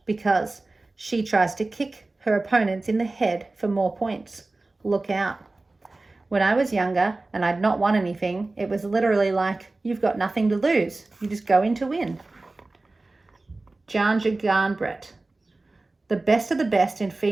because she tries to kick her opponents in the head for more points. Look out. When I was younger and I'd not won anything, it was literally like, you've got nothing to lose. You just go in to win. Janja Garnbret. The best of the best in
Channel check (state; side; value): quieter; left; 3.2 dB